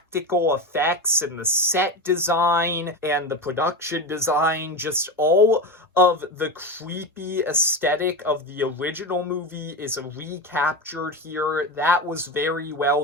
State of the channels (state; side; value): normal; both; correlation 0.21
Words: effects, and the set design and the production design, just all of the creepy aesthetic of the original movie is recaptured here. That was very well